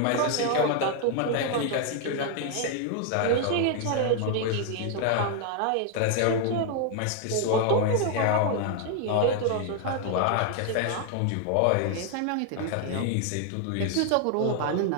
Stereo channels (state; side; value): different; both; correlation 0.00